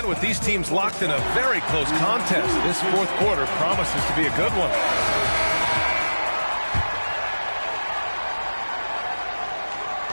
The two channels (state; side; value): inverted; both; correlation -1.00